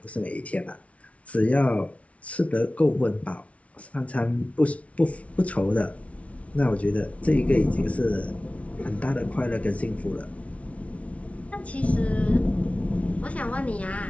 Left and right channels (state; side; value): late; right; 0.064 ms